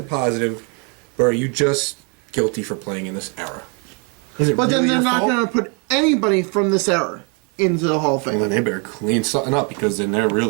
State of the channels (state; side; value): quieter; left; 35.7 dB